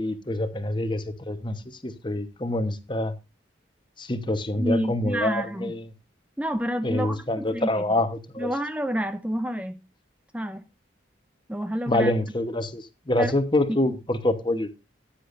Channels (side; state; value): both; normal; correlation 0.69